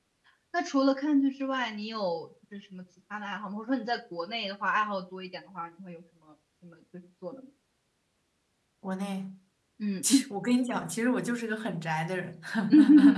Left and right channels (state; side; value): identical; both; correlation 1.00